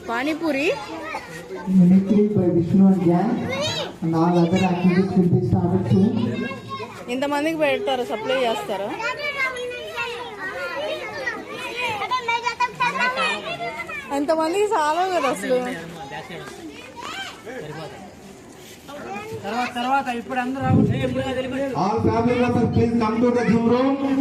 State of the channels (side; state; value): both; identical; correlation 1.00